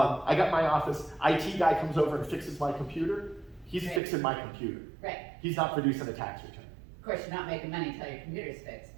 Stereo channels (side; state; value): left; drops out; at 4.0 s